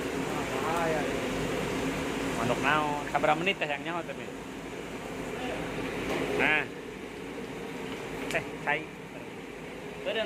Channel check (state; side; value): identical; both; correlation 1.00